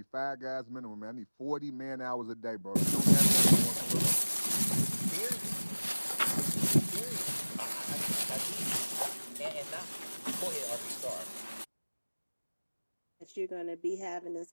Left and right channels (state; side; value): inverted; both; correlation -1.00